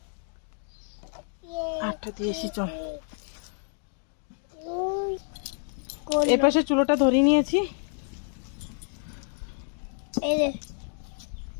হাতটা দিয়েছি। চল এই পাশে চুলোটা ধরিয়ে নিয়েছি। এই যে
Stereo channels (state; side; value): silent; right; 59 dB below the other